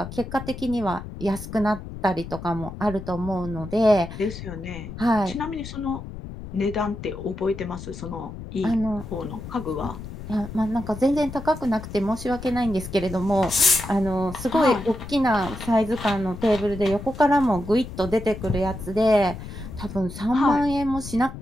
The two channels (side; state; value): left; noise; rumble, 11 dB below the sound